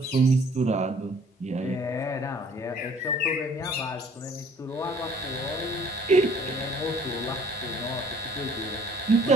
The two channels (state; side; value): normal; both; correlation 0.56